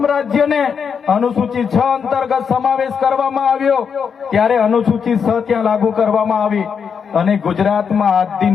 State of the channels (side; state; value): right; quieter; 6.6 dB